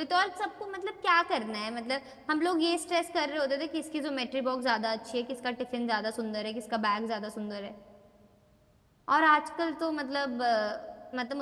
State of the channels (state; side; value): identical; both; correlation 1.00